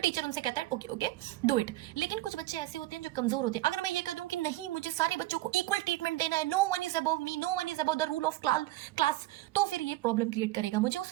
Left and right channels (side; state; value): left; quieter; 16.8 dB